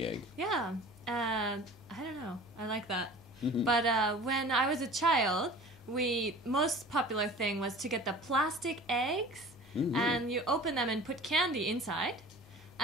egg. Yeah, I don't know. I like that. But when I was a child, most popular thing was to get the plastic eggs and you open them and put candy inside.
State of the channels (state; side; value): normal; both; correlation 0.42